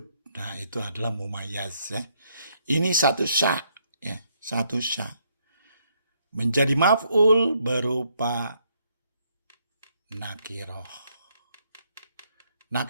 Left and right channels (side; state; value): both; inverted; correlation -0.72